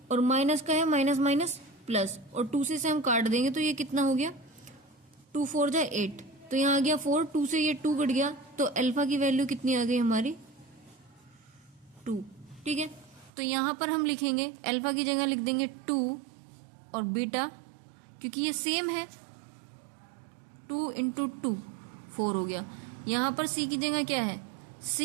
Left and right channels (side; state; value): left; drops out; at 13.3 s